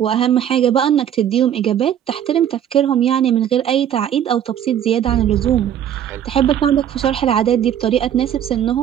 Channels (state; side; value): quieter; left; 9.9 dB